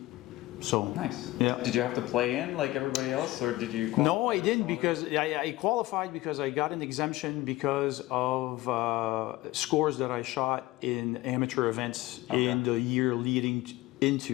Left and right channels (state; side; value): quieter; right; 18.3 dB